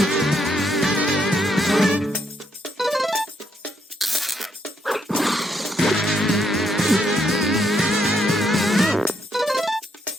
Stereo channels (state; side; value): normal; both; correlation 0.75